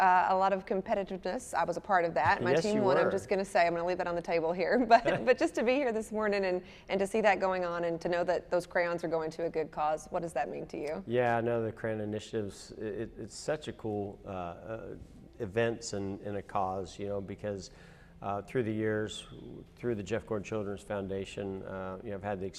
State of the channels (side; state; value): both; identical; correlation 1.00